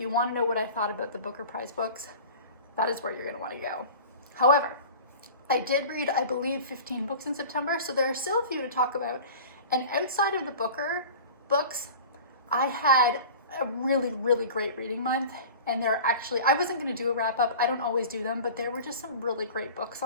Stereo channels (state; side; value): inverted; both; correlation -0.38